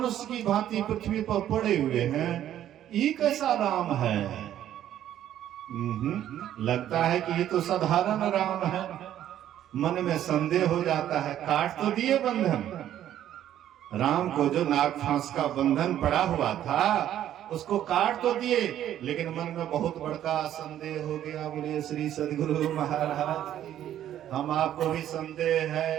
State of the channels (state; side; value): quieter; left; 11.5 dB